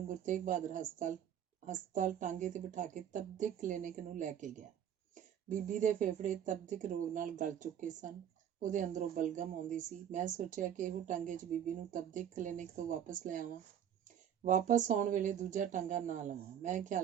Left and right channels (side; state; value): left; quieter; 9.4 dB